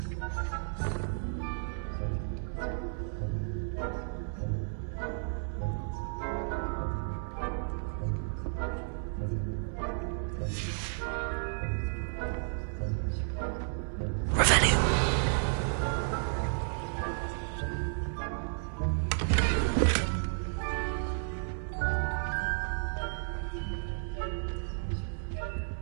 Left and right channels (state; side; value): silent; left; 56 dB below the other